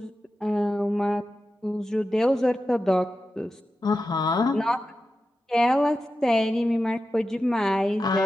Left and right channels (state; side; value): normal; both; correlation 0.92